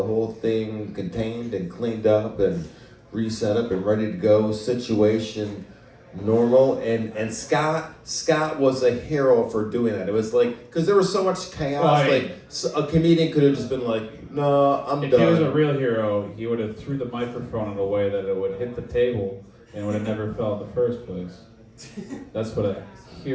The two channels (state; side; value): identical; both; correlation 1.00